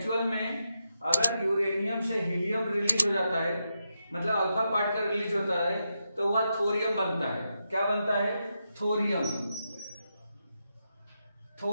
में अगर यूरेनियम से हीलियम रिलीज हो जाता है, मतलब अल्फा पार्टिकल रिलीज होता है, तो वह थोरियम बनता है। क्या बनता है, थोरियम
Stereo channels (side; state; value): both; inverted; correlation -0.86